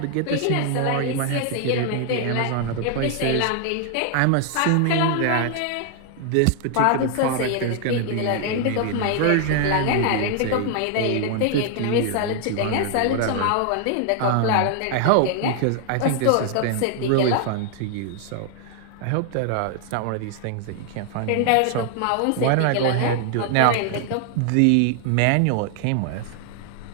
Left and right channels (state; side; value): different; both; correlation 0.00